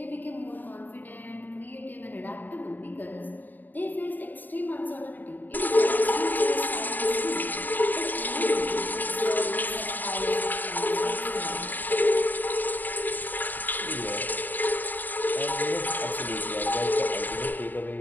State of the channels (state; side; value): late; right; 0.087 ms